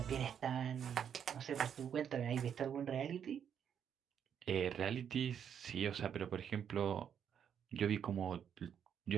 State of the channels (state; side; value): quieter; left; 8.3 dB